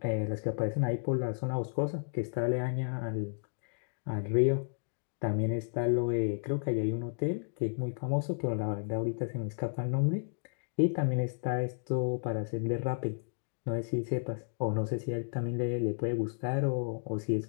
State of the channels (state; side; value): silent; right; digital silence